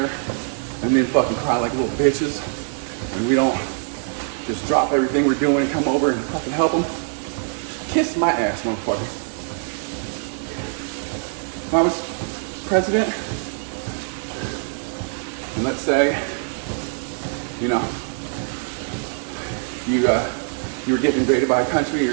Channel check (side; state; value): left; silent; 63 dB below the other